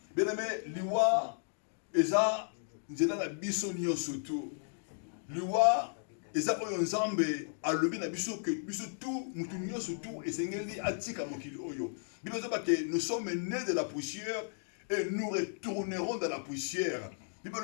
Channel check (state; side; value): silent; right; digital silence